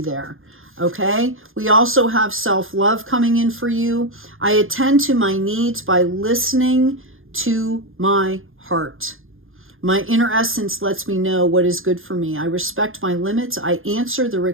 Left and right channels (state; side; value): late; left; 0.59 ms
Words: Okay, we also have self-love coming in for you. I attend to my needs by listening to my heart. My inner essence lets me know what is good for me. I respect my limits. I answer the